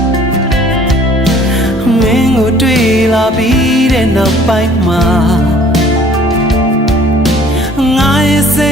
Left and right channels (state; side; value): normal; both; correlation 0.54